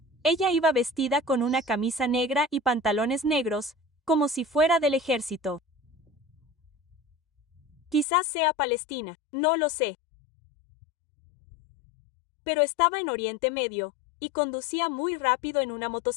ella iba vestida con una camisa negra y pantalones negros, como si fuera del ejército. Quizás sea Palestina, no lo sé. Pero estaba en Oriente Medio, y conducía muy rápido en una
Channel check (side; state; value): right; drops out; at 8.1 s